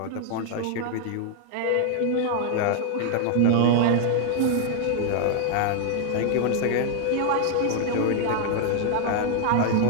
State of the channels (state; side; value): different; both; correlation 0.00